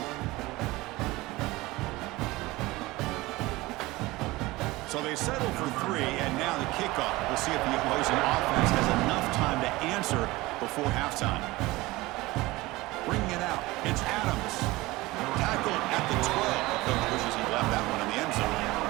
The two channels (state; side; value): quieter; left; 20.2 dB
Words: So they settle for 3, and now the kickoff. We'll see if the opposing offense has enough time to answer before halftime. Bringing it out, it's Adams. Tackled at the 12. Coach wishes he left that one in the end zone.